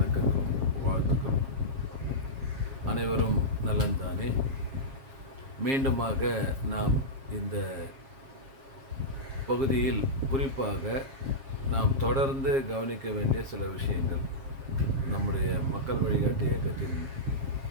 வாழ்த்துக்களும். அனைவரும் நலன்தானே? மீண்டுமாக நாம் இந்த பகுதியில் குறிப்பாக நாம் தொடர்ந்து கவனிக்க வேண்டிய சில விஷயங்கள், நம்முடைய மக்கள் வழிகாட்டி இயக்கத்தின்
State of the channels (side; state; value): left; late; 7.5 ms